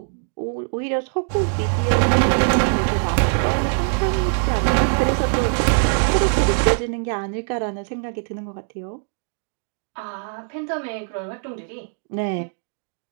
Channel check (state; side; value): silent; left; 64 dB below the other